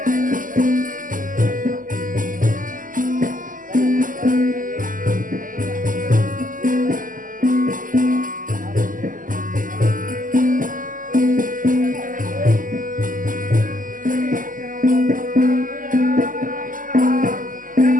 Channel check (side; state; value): left; late; 0.39 ms